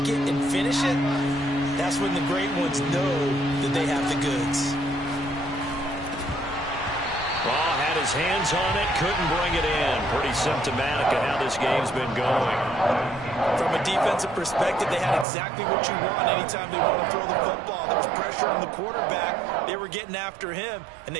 it and finish it, that's when the great ones know that they have the goods. Raw had his hands on it, couldn't bring it in. Pretty symptomatic of how this game's been going. From a defensive perspective, they had exactly what you want anytime they want to throw the football. There was pressure on the quarterback. They were getting after him, and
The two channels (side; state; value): left; drops out; at 15.2 s